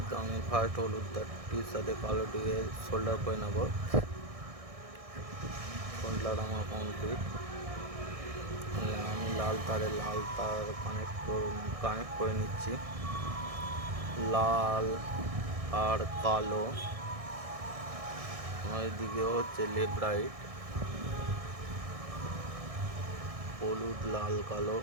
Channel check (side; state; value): left; late; 1.6 ms